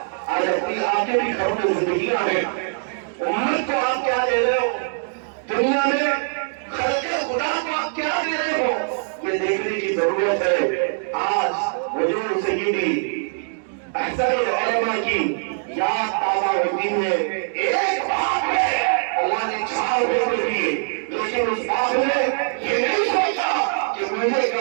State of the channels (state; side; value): silent; left; digital silence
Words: آج اپنی آپ کے بھی گھروں میں زندگیاں ہیں. امت کو آپ کیا دے رہے ہو؟ دنیا میں خلق خدا کو آپ کیا دے رہے ہو؟ یہ دیکھنے کی ضرورت ہے. آج حضور سیدی احسن العلماء کی یاد تازہ ہوتی ہے. ایک باپ ہے، اللہ نے 4 بیٹے دیے، لیکن اس باپ نے یہ نہیں سوچا کہ مجھے